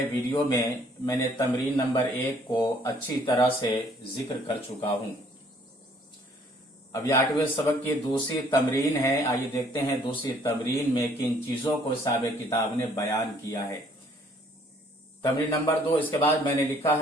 वीडियो में मैंने तमरीन नंबर 1 को अच्छी तरह से जिक्र कर चुका हूं। अब ये 8वें सबक की दूसरी तमरीन है। आइए देखते हैं दूसरी तमरीन में किन चीजों को साहिब किताब ने बयान किया है। तमरीन नंबर 2, इसके बाद मैंने लिखा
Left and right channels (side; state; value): both; normal; correlation 0.61